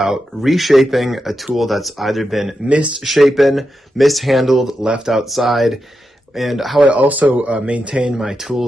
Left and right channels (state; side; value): normal; both; correlation 0.88